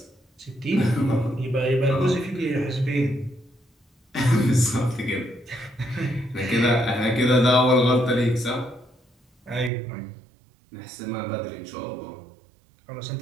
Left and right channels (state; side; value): drops out; left; at 9.7 s